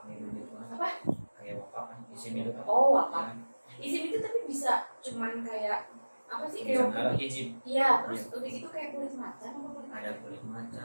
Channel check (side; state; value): both; inverted; correlation -1.00